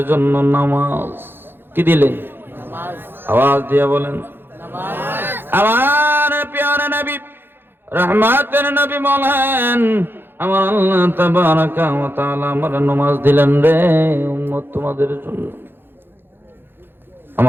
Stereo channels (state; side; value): late; left; 0.10 ms